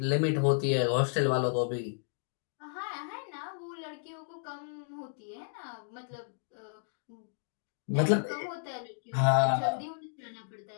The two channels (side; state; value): right; silent; digital silence